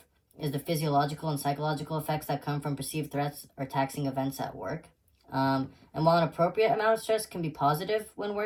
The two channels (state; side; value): identical; both; correlation 1.00